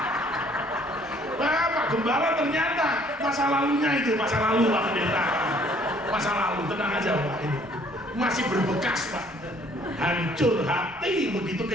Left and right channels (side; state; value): both; normal; correlation 0.60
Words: Pak Gembala ternyata masa lalunya itu masa lalu Pak Pendeta. Masa lalu, tenang aja Pak ini. Masih berbekas Pak. Hancur hati begitu